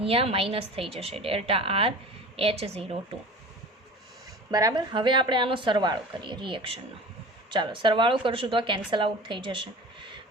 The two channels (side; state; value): both; normal; correlation 0.38